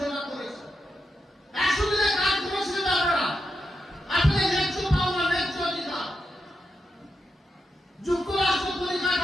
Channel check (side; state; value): both; normal; correlation 0.86